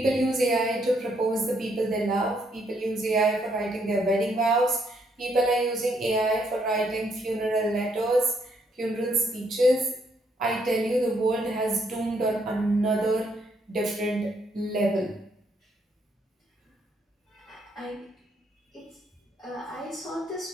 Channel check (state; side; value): normal; both; correlation 0.72